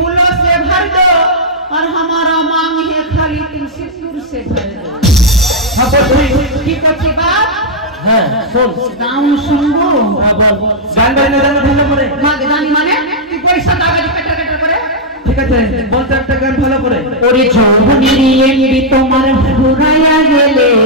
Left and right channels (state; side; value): normal; both; correlation -0.05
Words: से भर दो और हमारा मांग है खाली तुम सिंदूर से भर दो हाँ बोल की कच्ची बात হ্যাঁ শোন गाँव सुनबो গান গাইলে গান ভালো করে माँ गानी माने तू पैसा दागा दी कटर कटर करे ঠিক আছে বলতে একটা গান ভালো করে ওরে যৌবনেরই এমনি তোমার ফুরাইয়া গেলে